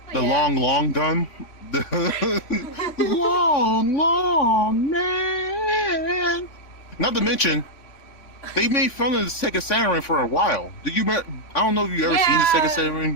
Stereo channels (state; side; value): late; right; 3.4 ms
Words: the Yeah. long gun. The long man. Not to mention, they made fun of the Sega Saturn for a while. Did you? I don't know if you ever seen the Sega Yeah.